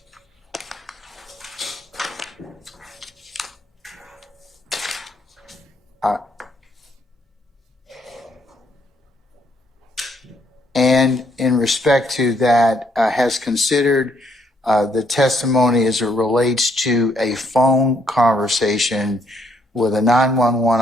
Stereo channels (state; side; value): normal; both; correlation 0.70